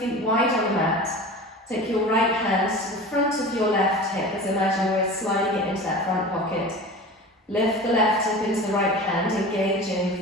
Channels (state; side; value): normal; both; correlation 0.35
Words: wide on the mat. Take your right hand to the front of your left hip, as imagine we're sliding it into that front pocket. Lift the left hip into the right hand, engaging